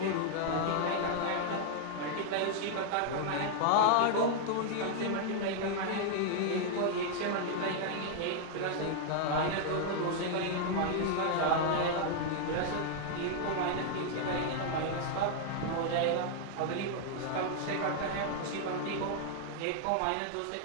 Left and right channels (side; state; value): both; different; correlation -0.01